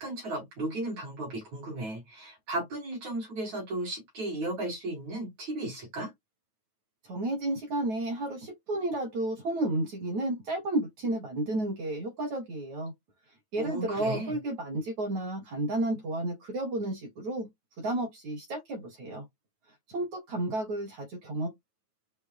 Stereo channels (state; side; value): late; left; 9.3 ms